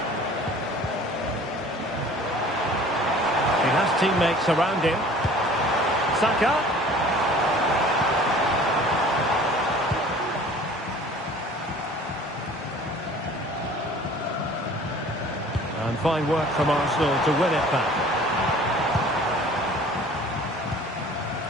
He has teammates around him. Saka. And fine work from Arsenal to win it back.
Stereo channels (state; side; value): normal; both; correlation 0.48